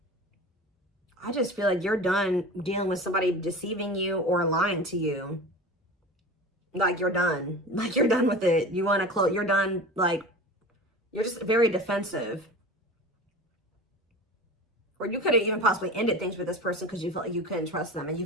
I just feel like you're done dealing with somebody deceiving you or lying to you. Like you're done. Like you're done with it. You want to close. You're done. Like you're just very defensive. Or you could have even possibly ended things with this person because you felt like you couldn't trust them, and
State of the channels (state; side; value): normal; both; correlation 0.34